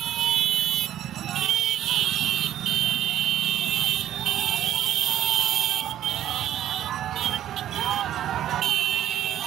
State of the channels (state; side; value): quieter; left; 11.8 dB